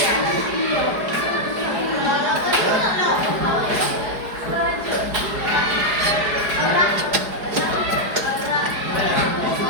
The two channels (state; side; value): late; left; 4.8 ms